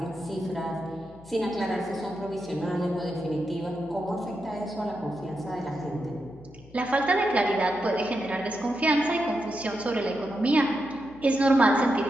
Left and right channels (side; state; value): left; noise; hum, 22 dB below the sound